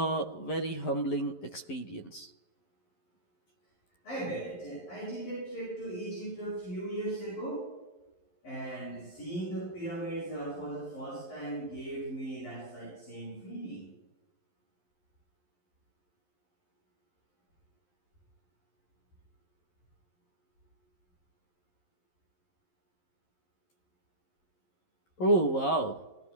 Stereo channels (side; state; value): right; late; 11 ms